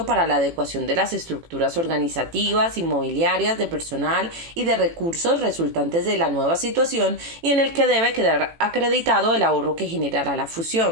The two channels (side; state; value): left; late; 18 ms